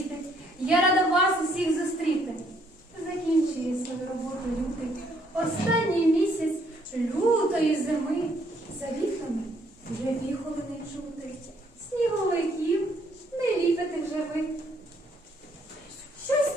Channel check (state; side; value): normal; both; correlation 0.68